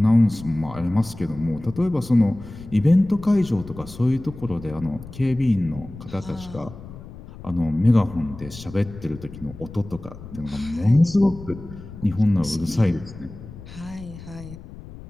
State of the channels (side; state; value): left; noise; rumble, 15 dB below the sound